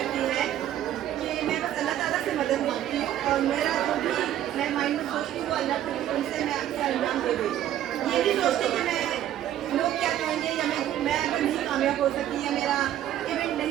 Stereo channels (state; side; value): quieter; left; 11.9 dB